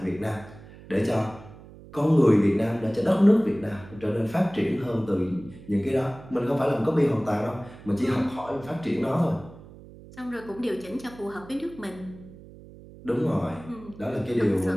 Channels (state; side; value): noise; right; hum, 19 dB below the sound